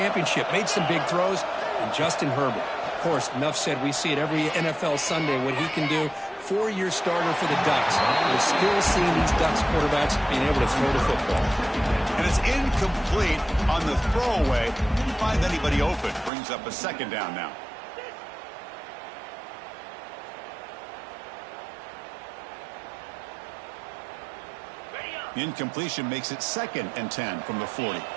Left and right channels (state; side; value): drops out; left; at 16.3 s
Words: made some big throws, and Justin Herbert. Of course, enough said, we see it every NFL Sunday, what he can do. 4-year starter for the Ducks. We're still seeing these Ducks quarterbacks being able to throw the football. And it's incomplete on the throwaway. Didn't find anybody open. Brings up a 2nd down now. The incompletion makes it 2nd and 10 from the 40.